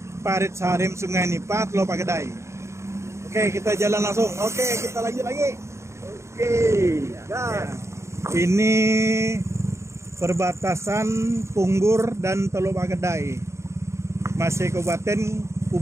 Parit Sarim Sungai Nipa, Teluk Pegedai. Oke, kita jalan langsung. Oke, kita lanjut lagi. Oke, ya. Ini perbatasan Punggur dan Teluk Pegedai, masih Kabupaten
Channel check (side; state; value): left; late; 0.14 ms